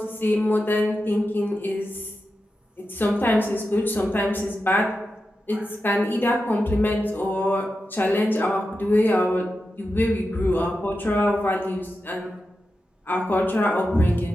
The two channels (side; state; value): both; normal; correlation 0.90